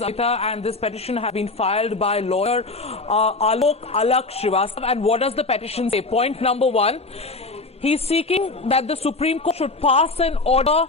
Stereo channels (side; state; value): right; quieter; 3.4 dB